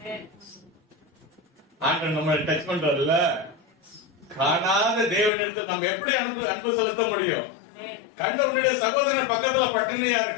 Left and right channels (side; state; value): right; drops out; at 5.3 s